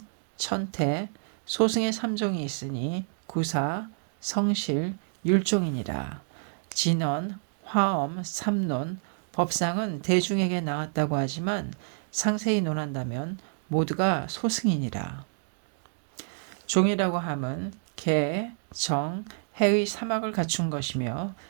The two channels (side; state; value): left; silent; digital silence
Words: 천태, 소승의 3종이 있으니 구사, 성실, 율종이니라. 진언, 화엄, 삼론, 법상은 대중에게 나왔다고 하지만 상세히 논한다면 모두가 소승이니라. 종이라고 함은 개, 정, 해의 사막을 갖춘 것이며